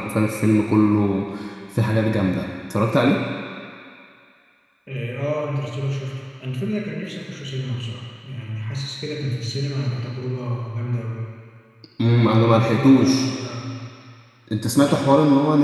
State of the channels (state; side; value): identical; both; correlation 1.00